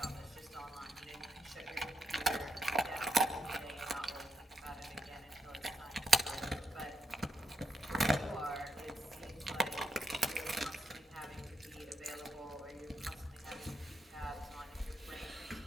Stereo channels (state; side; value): normal; both; correlation 0.81